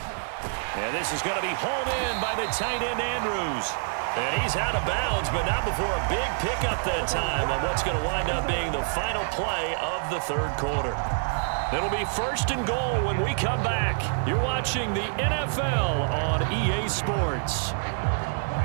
And this is going to be hauled in by the tight end, Andrews. And he's out of bounds, but not before a big pickup that time on what's going to wind up being the final play of the 3rd quarter. It'll be 1st and goal when we come back. You're watching the NFL on EA Sports.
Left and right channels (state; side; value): silent; left; digital silence